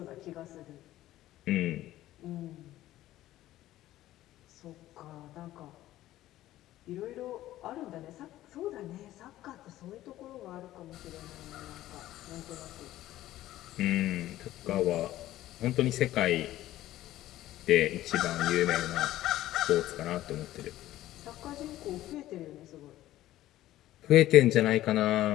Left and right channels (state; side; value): quieter; right; 14.6 dB